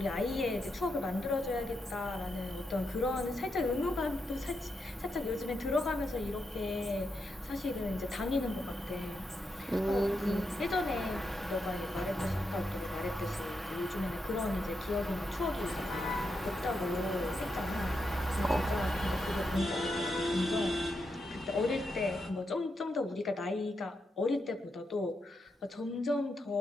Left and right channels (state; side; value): normal; both; correlation 0.84